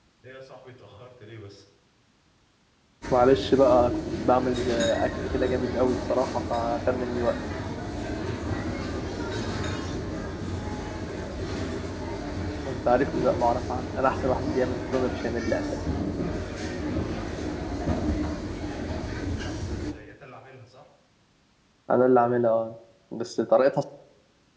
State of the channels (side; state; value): both; identical; correlation 1.00